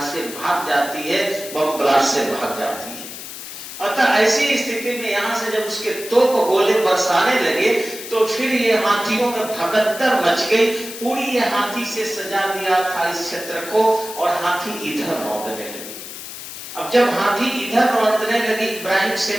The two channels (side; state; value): left; noise; hiss, 11 dB below the sound